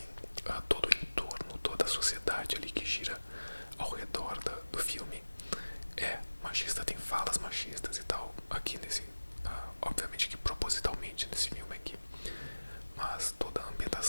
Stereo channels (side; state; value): both; inverted; correlation -1.00